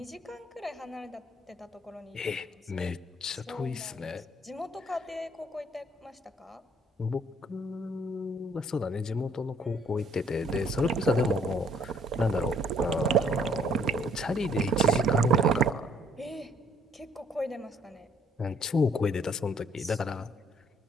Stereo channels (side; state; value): both; normal; correlation 0.63